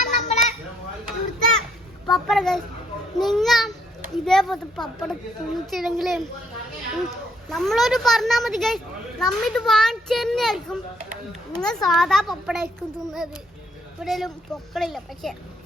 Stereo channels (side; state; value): both; normal; correlation 0.69